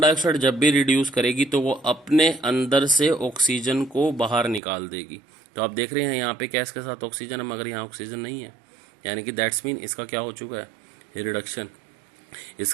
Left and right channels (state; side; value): drops out; left; at 4.6 s